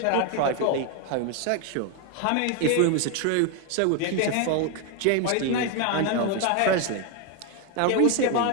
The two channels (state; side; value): different; both; correlation 0.01